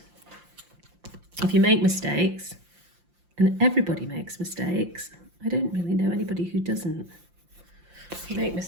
if you make mistakes, and everybody makes mistakes, I don't really know anybody who doesn't. If you make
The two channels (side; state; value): left; late; 5.7 ms